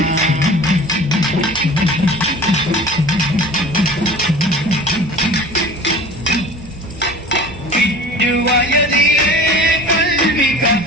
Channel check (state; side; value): normal; both; correlation 0.41